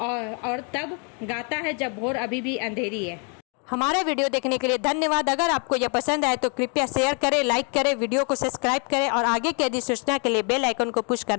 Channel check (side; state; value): right; quieter; 37.9 dB